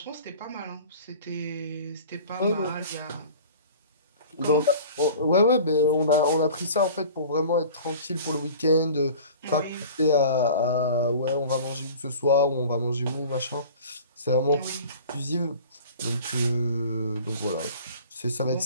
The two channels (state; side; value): inverted; both; correlation -0.43